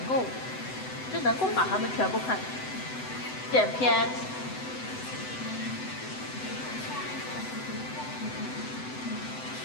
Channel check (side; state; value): right; late; 7.9 ms